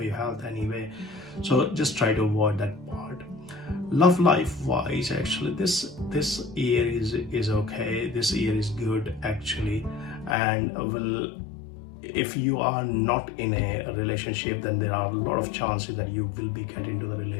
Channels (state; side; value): drops out; right; at 10.4 s